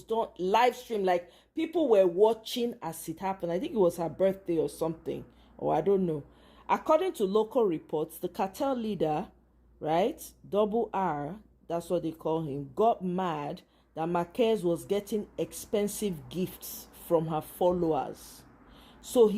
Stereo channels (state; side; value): identical; both; correlation 1.00